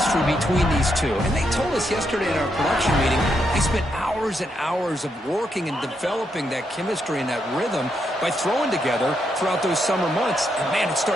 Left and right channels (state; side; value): normal; both; correlation 0.80